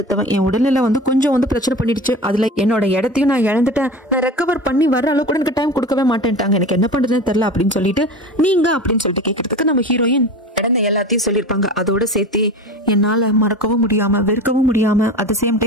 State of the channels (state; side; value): normal; both; correlation 0.32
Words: என் உடல்நிலை வந்து கொஞ்சம் வந்து பிரச்சனை பண்ணிடுச்சு, அதுல என்னோட இடத்தையும் நான் இழந்துட்டேன், நான் ரெக்கவர் பண்ணி வர அளவுக்கு கூட எனக்கு டைம் கொடுக்கவே மாட்டேன்ட்டாங்க, எனக்கு என்ன பண்றதுன்னு தெரியல அப்படின்னு சொல்லிட்டு நீங்க அப்படின்னு சொல்லிட்டு கேட்கறதுக்கு நம்ம ஹீரோயின் நடந்த எல்லாத்தையும் சொல்லிருப்பாங்க. அதோட சேர்த்து என்னால மறக்கவும் முடியாம வெறுக்கவும் முடியாம அட் சேம்